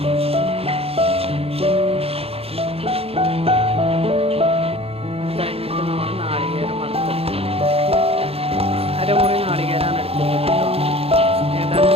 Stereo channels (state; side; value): late; left; 0.28 ms